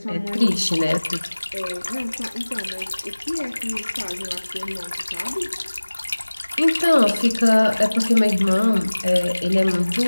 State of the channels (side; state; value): both; inverted; correlation -1.00